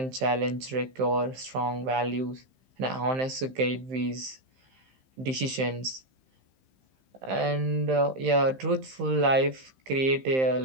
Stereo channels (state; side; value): late; left; 15 ms